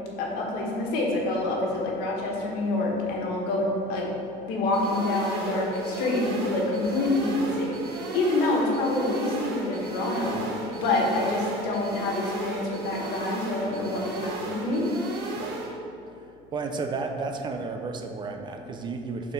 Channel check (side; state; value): left; noise; hum, 28 dB below the sound